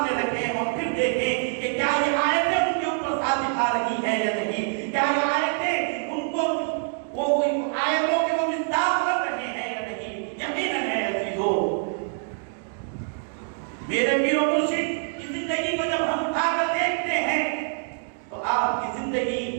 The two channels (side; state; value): left; silent; 61 dB below the other